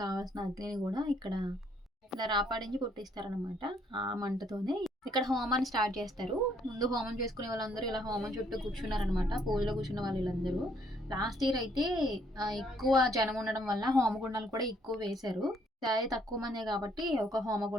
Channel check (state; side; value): normal; both; correlation 0.67